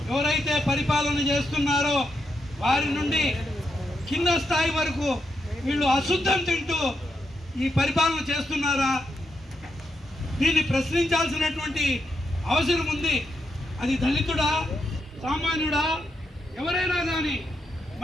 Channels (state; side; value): normal; both; correlation 0.82